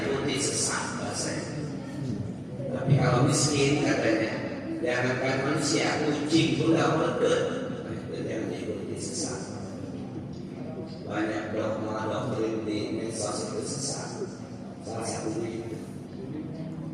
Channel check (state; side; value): identical; both; correlation 1.00